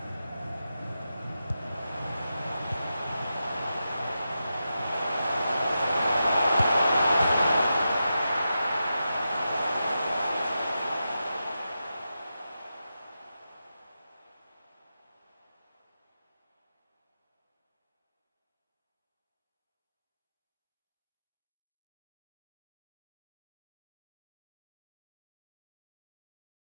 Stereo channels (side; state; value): both; inverted; correlation -0.89